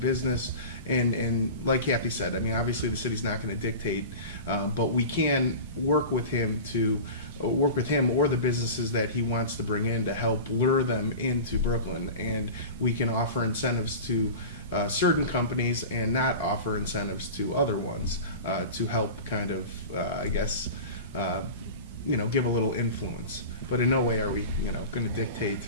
business, and like Kathy said, I mean, obviously the city's not going to dictate, but we can work with him or the businesses that he wants to bring in to help lure them into Brooklyn, and we can offer incentives to certain companies and not offer incentives to other ones to help kind of, give a little influence. But in no way are we, going to dictate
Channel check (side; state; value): both; inverted; correlation -0.33